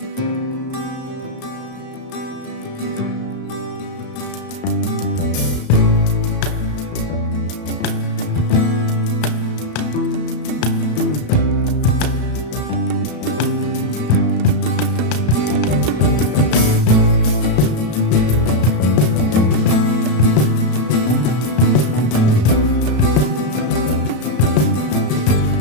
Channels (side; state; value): right; late; 33 ms